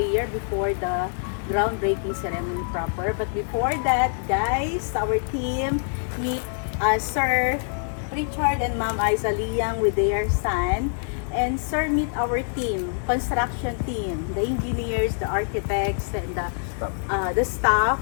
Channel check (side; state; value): right; silent; digital silence